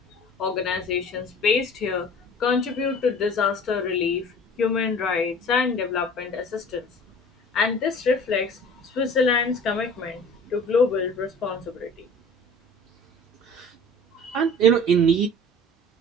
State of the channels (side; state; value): both; normal; correlation 0.44